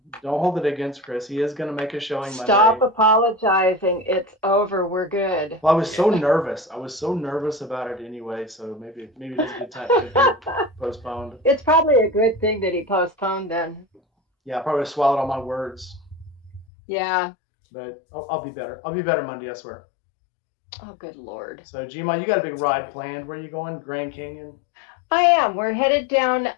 hold it against Chris. He is going to make a showing Stop Monday. apologizing. It's over. We're good. Well, I was so nervous. I was so nervous about it anyway. So maybe it is a good time to be postponed. It's probably a good thing that he postponed then. Yeah, I probably swallowed all my words. Yeah. But I'll be better. I'll be better Monday, I swear. Oh, good Lord. So, Gma, you got a big ride planned. Where are you going? Grand Canyon? I am. We're headed down.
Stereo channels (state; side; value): drops out; right; at 16.7 s